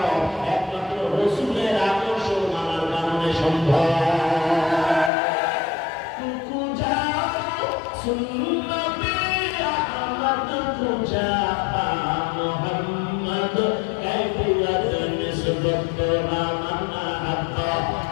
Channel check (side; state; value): right; drops out; at 5.1 s